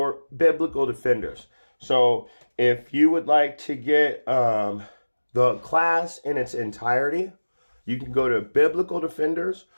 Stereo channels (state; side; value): inverted; both; correlation -1.00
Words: Biblical Defenders. So if you would like to get the class in its entirety, you can go to Biblical Defenders